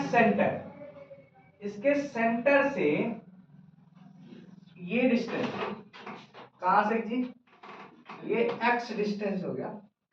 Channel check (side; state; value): both; identical; correlation 1.00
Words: सेंटर, इसके सेंटर से ये डिस्टेंस कहां से जी, ये x डिस्टेंस हो गया।